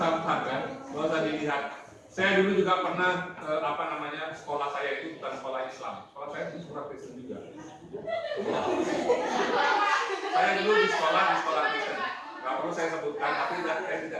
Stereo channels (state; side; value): identical; both; correlation 1.00